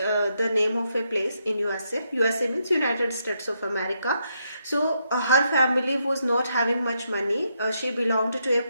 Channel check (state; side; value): inverted; both; correlation -0.79